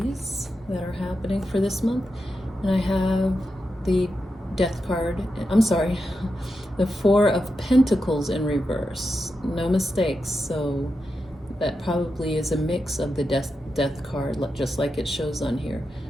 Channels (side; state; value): both; normal; correlation 0.88